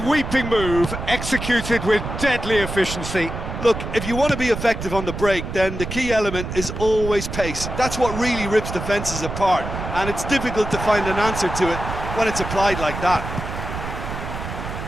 move, executed with deadly efficiency. Look, if you want to be effective on the break, then the key element is always pace. That's what really rips defences apart, and it's difficult to find an answer to it when it's applied like that.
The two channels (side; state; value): right; noise; rumble, 7 dB below the sound